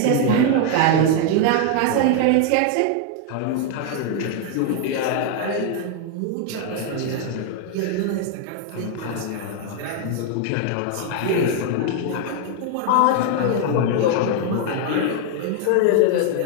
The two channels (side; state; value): both; different; correlation 0.00